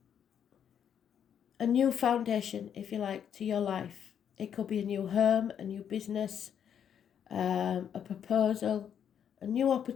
new foundation, if you like, to your life. It could be a new home, a new business, a proposal, a new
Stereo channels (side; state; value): right; quieter; 8.6 dB